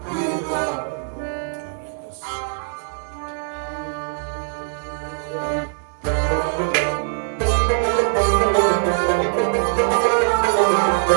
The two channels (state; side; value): silent; left; 56 dB below the other